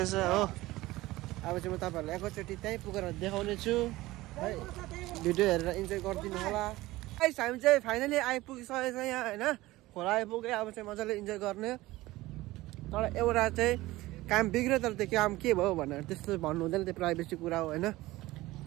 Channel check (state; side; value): quieter; left; 18.4 dB